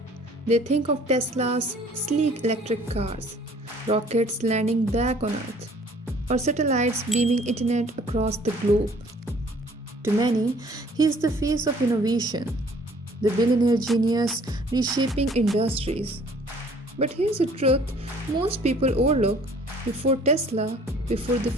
they think of Tesla's sleek electric cars, rockets landing back on Earth, or satellites beaming internet across the globe. To many, he is the face of innovation, the billionaire genius reshaping industries. But here's the truth most people overlook: before Tesla, before the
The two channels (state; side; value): normal; both; correlation 0.55